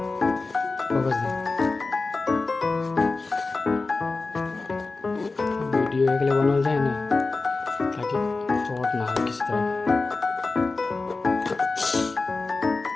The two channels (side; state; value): right; quieter; 3.7 dB